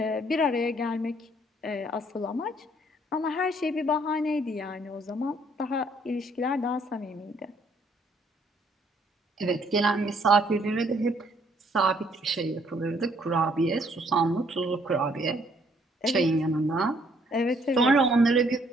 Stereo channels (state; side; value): normal; both; correlation 0.65